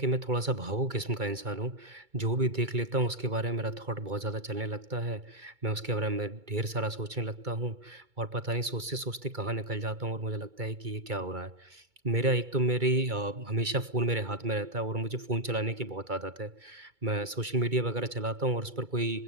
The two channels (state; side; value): late; left; 2.2 ms